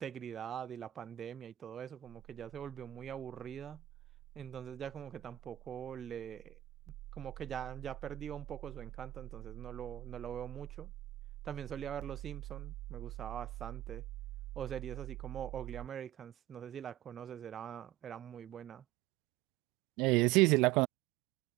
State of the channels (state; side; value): quieter; left; 14.8 dB